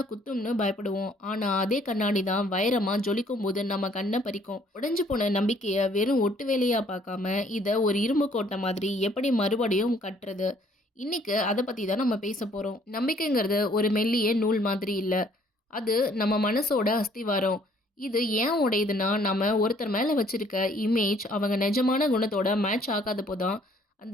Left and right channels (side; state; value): both; normal; correlation 0.61